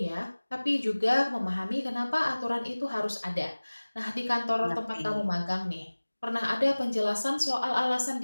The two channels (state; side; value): inverted; both; correlation -1.00